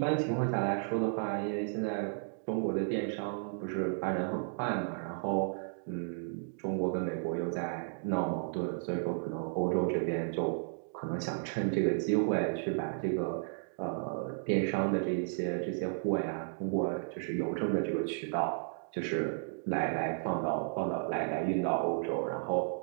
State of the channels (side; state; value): left; silent; digital silence